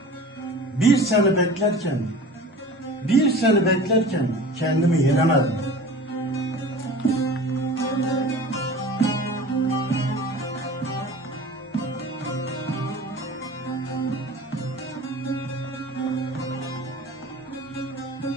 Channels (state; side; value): normal; both; correlation 0.39